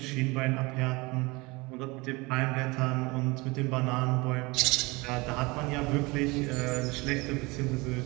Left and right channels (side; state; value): left; quieter; 24.6 dB